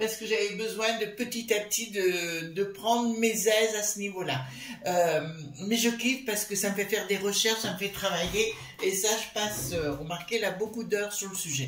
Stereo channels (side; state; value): both; identical; correlation 1.00